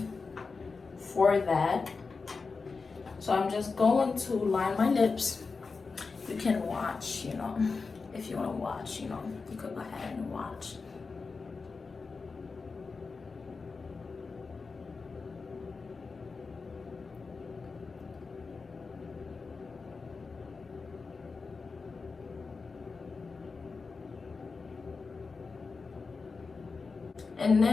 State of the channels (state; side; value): quieter; right; 4.5 dB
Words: for that. So I'm just going to line my lips. You can watch, you know, if you want to watch, you know, you could go ahead and watch. And